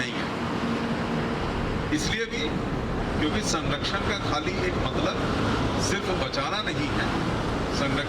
है। इसलिए भी क्योंकि संरक्षण का खाली एक मतलब सिर्फ बचाना नहीं है,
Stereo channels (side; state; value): both; identical; correlation 1.00